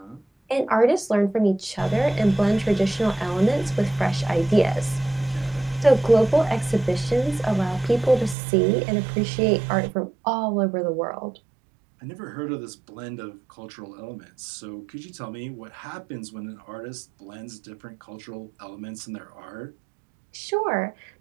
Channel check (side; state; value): left; drops out; at 8.3 s